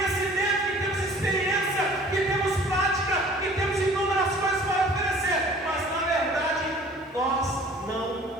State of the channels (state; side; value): normal; both; correlation 0.50